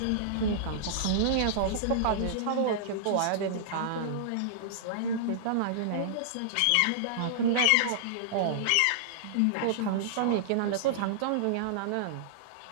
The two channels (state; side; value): different; both; correlation -0.02